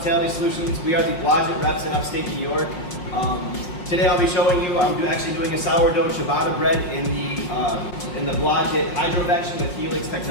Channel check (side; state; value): right; late; 5.6 ms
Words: Solutions. We are the Blodgett reps in upstate New York. Today I'll be showing you, I'm actually doing a sourdough ciabatta bread in the Blodgett Hydrovection with Helix